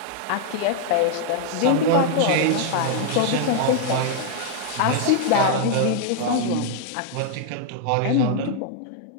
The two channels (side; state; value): both; different; correlation 0.00